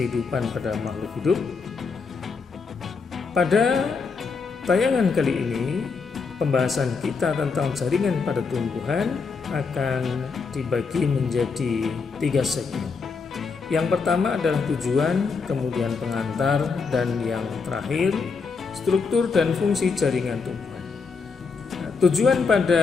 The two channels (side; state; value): right; quieter; 4.9 dB